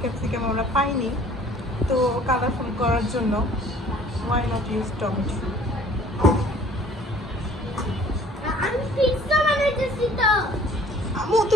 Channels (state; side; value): normal; both; correlation 0.53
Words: ক্যাপসিকাম আমরা পাইনি, তো কালারফুল করার জন্য ওয়াই নট ইউজ টমেটো। আমি পিৎজা বানাইতেছি তো। আমু